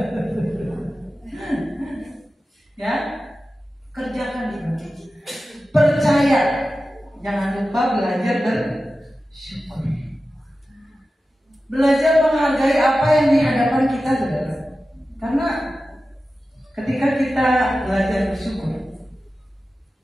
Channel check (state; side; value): normal; both; correlation 0.94